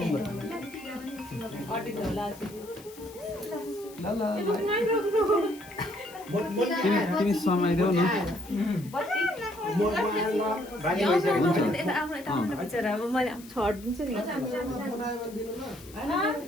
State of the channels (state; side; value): noise; left; hiss, 20 dB below the sound